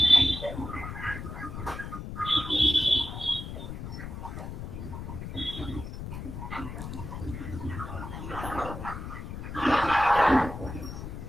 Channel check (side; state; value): left; noise; rumble, 8 dB below the sound